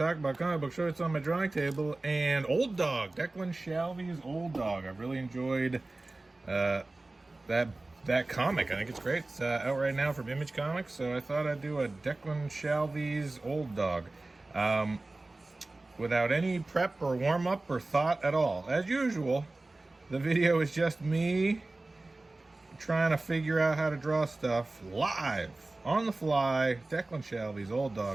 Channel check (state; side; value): quieter; left; 3.0 dB